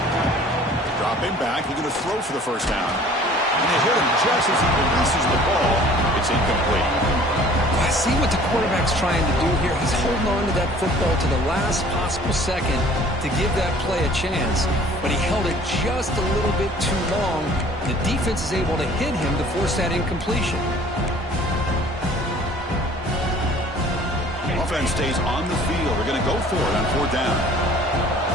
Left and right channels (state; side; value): normal; both; correlation 0.51